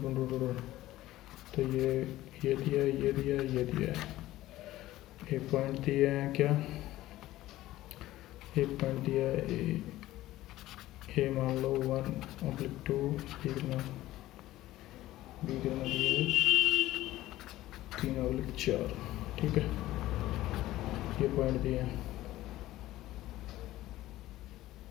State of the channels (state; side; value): quieter; right; 15.7 dB